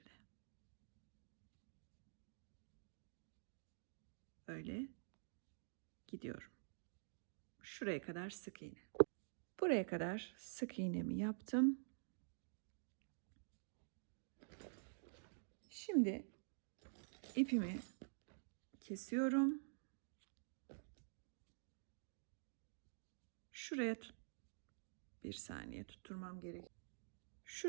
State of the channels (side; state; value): left; silent; digital silence